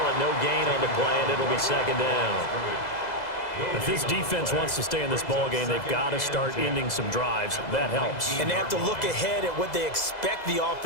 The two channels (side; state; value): right; late; 2.0 ms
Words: it no gain on the play, and it'll be 2nd down. If this defense wants to stay in this ball game, they've got to start ending some drives. That helps. And they have to look ahead at what they expect the